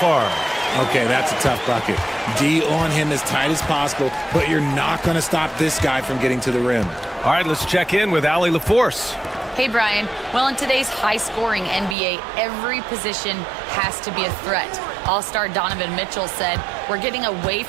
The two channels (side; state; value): left; drops out; at 12.0 s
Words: Okay, that's a tough bucket. D on him as tight as possible, but you're not going to stop this guy from getting to the rim. All right, let's check in with Allie LaForce. Hey, Brian. Well, in today's high-scoring NBA, every position has to be a threat. All-star Donovan Mitchell said, "We're getting away